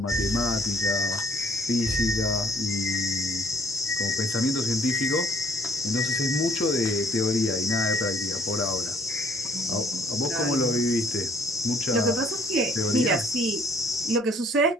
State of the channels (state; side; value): normal; both; correlation 0.60